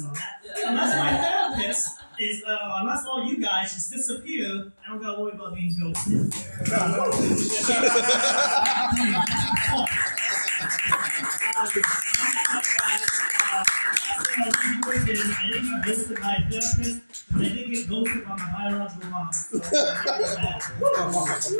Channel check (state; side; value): inverted; both; correlation -1.00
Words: therapist is, unless all you guys just disappear, I don't gotta worry about being ghosted. I didn't get ghosted by a therapist, but I did get ghosted by my biological mom. So,